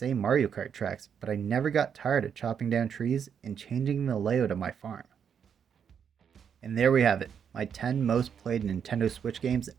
Mario Kart tracks, but I never got tired of chopping down trees and changing the layout of my farm. And there we have it, my 10 most played Nintendo Switch games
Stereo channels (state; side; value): quieter; left; 7.6 dB